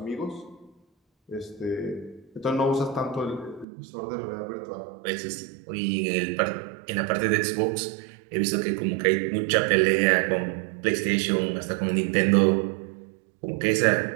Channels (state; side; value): drops out; left; at 3.7 s